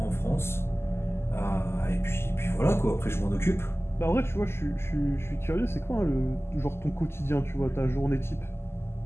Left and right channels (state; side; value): late; right; 0.12 ms